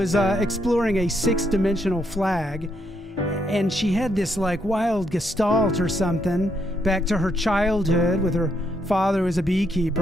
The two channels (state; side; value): normal; both; correlation 0.76